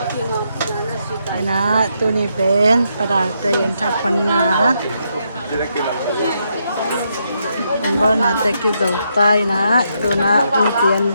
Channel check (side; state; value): both; inverted; correlation -0.79